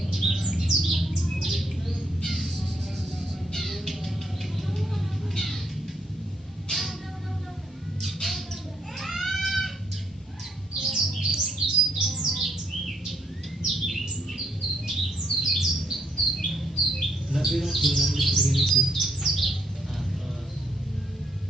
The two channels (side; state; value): both; normal; correlation 0.72